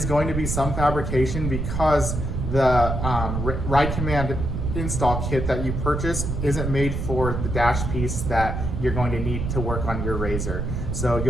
going to be some fabrication because the ride command install kit that you purchase isn't made for the dash piece that you're going to need to work on your RZR. So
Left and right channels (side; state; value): right; noise; rumble, 3 dB below the sound